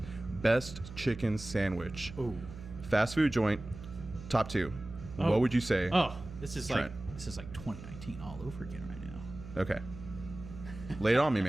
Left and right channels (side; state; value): right; noise; hum, 13 dB below the sound